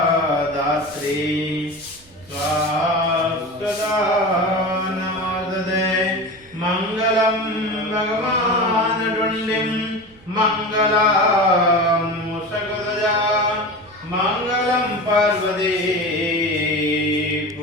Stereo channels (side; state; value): right; noise; rumble, 27 dB below the sound